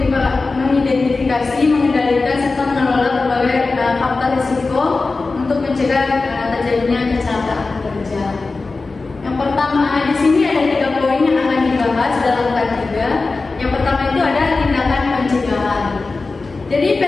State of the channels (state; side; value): quieter; right; 3.8 dB